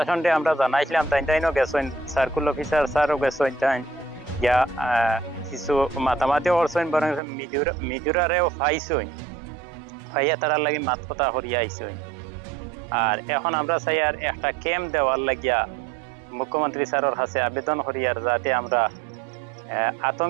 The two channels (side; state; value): left; drops out; at 7.2 s